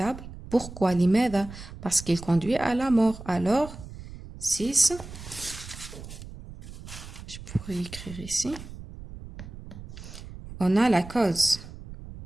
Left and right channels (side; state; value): right; noise; rumble, 14 dB below the sound